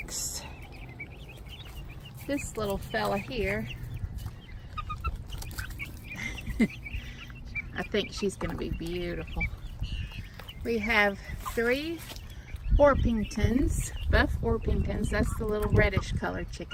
This little fella here, I think she's going to be beautiful. We have 3 Orpingtons, buff Orpingtons. That's the little reddish colored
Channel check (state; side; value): identical; both; correlation 1.00